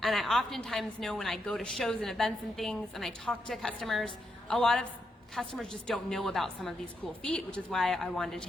And I oftentimes know when I go to shows and events and things and I talk to customers, a lot of customers just don't know about some of these cool feet, which is why I wanted to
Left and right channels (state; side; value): normal; both; correlation 0.81